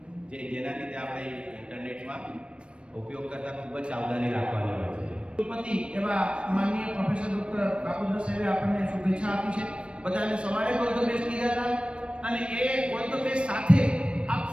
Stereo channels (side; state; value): left; late; 0.058 ms